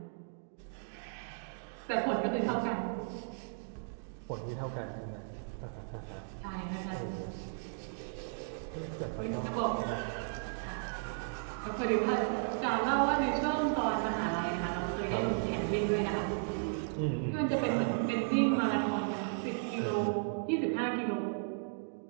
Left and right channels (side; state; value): left; silent; digital silence